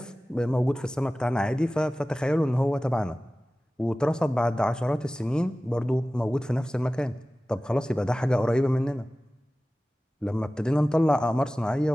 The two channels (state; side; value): normal; both; correlation 0.97